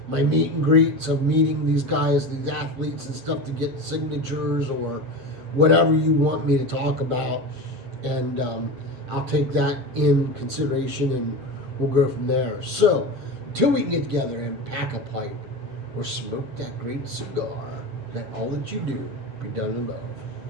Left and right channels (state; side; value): late; left; 8.5 ms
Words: my meet and greets of meeting these guys, these athletes and stuff to get signatures, or whatever you want me to talk about. And I'll take that in consideration and we'll go from there. So, until we can get together and pack a pipe or smoke that great cigar, let all that you do be done in love.